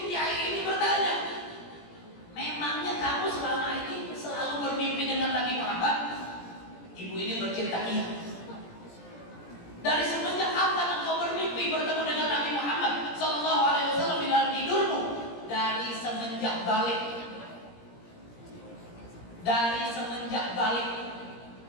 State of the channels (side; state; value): right; late; 17 ms